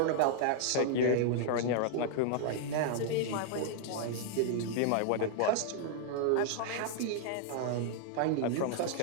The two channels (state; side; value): different; both; correlation -0.01